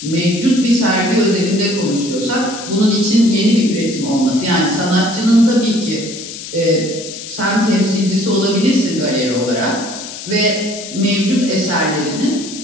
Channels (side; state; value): left; noise; hiss, 11 dB below the sound